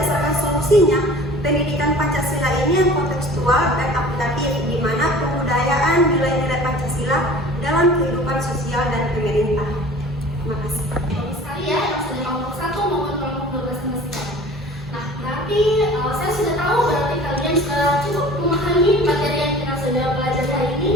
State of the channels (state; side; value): normal; both; correlation 0.44